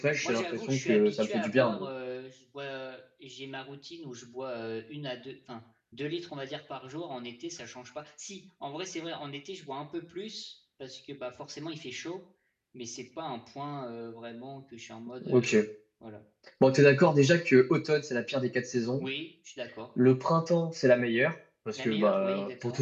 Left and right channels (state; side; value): identical; both; correlation 1.00